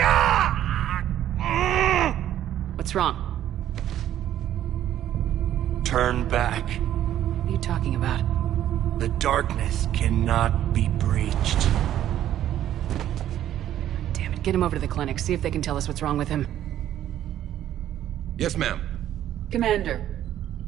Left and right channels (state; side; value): quieter; left; 11.8 dB